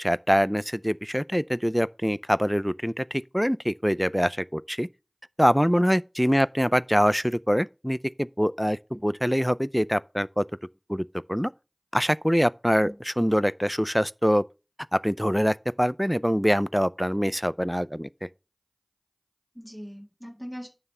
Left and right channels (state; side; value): identical; both; correlation 1.00